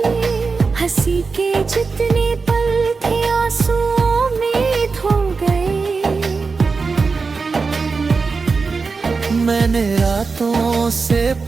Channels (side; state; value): left; quieter; 4.6 dB